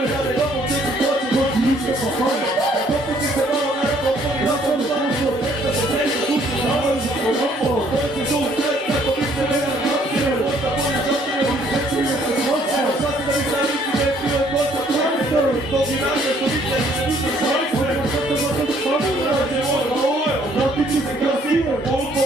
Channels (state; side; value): normal; both; correlation 0.63